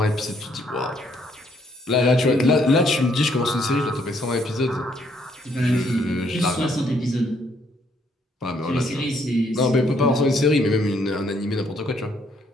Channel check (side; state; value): both; normal; correlation 0.69